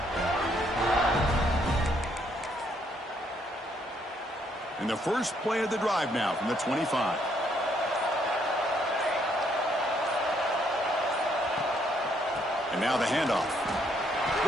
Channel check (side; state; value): both; normal; correlation 0.70